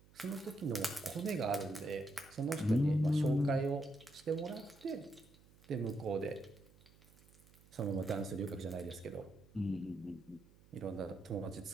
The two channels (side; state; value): right; noise; hum, 26 dB below the sound